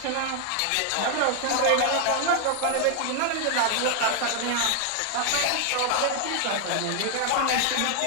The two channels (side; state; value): both; different; correlation 0.00